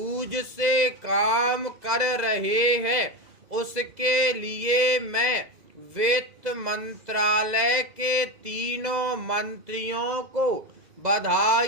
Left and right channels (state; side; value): late; left; 2.0 ms